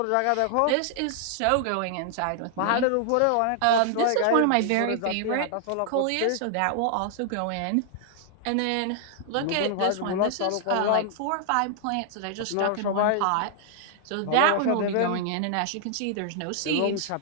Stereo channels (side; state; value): both; different; correlation 0.00